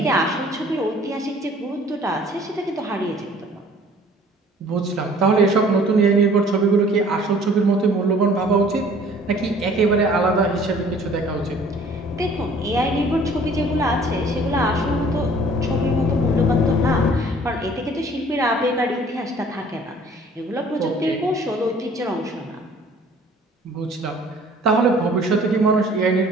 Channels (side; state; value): both; normal; correlation 0.53